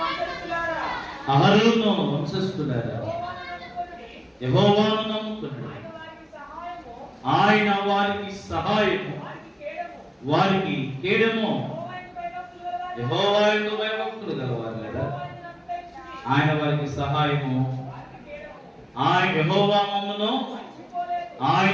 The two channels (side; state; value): both; identical; correlation 1.00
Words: అహరోను వంశస్థులారా, యెహోవాను నమ్ముకున్నాడు, ఆయన వారికి సహాయము, వారికి కేడము. యెహోవాయందు భయభక్తులు గలవారు కదా, ఆయన వారికి సహాయము. ఆయన యెహోవా మమ్మును,